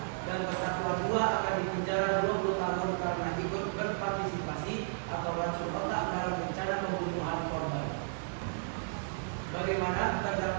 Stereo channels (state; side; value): silent; left; digital silence